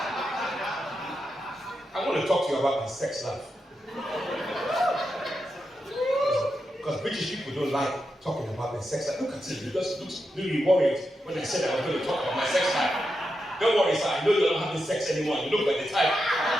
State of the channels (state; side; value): normal; both; correlation 0.87